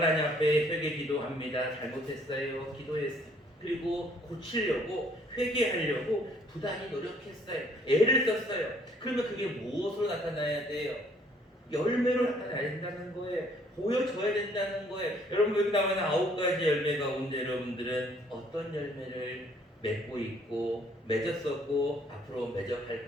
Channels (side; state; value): both; normal; correlation 0.62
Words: 앞에 회개 기도합니다. 잘못했어요. 기도했어요. 그리고 고치려고, 회개하려고 부단히 노력했어요. 애를 썼어요. 그러면 그게 무엇으로 나타나야 돼요? 열매로 나타나야 된다는 거예요. 보여줘야 된다는 거예요. 여러분, 여기 나오는 9가지 열매 가운데 여러분들은 어떤 열매를 맺고 있고 맺었었고 앞으로 맺어갈